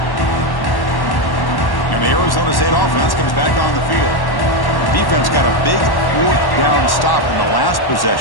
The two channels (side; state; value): right; late; 1.1 ms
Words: And the Arizona State offense comes back on the field. Defense got a big 4th down stop in the last